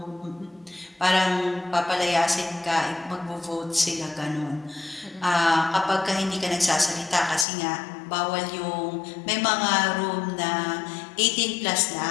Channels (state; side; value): drops out; right; at 7.5 s